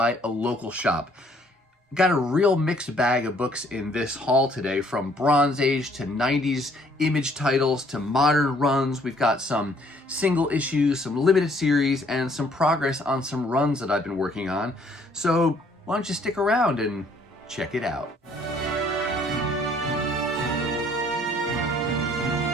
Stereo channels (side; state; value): both; normal; correlation 0.62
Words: a local shop. Got a real mixed bag of books in this haul today, from Bronze Age to 90s image titles to modern runs. We've got some single issues, some limited series, and some progress on some runs that I've been working on. So why don't you stick around and check it out.